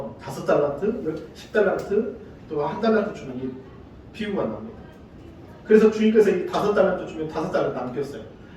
5달란트, 10달란트, 또 1달란트 주는 이 비유가 나옵니다. 그래서 주님께서 이 5달란트 주면 5달란트 남겼어요.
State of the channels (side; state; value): both; identical; correlation 1.00